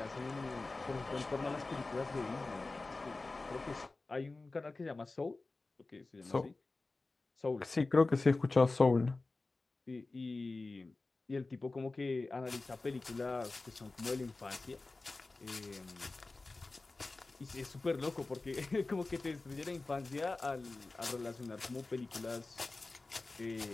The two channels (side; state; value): right; quieter; 3.4 dB